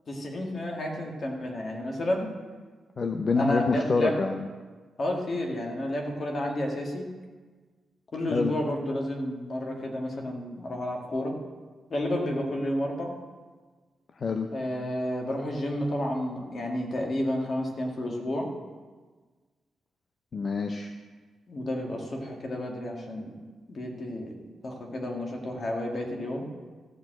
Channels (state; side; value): normal; both; correlation 0.89